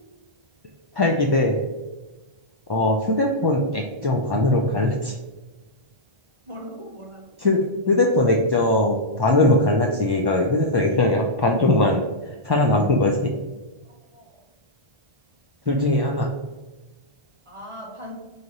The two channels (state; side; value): late; left; 1.1 ms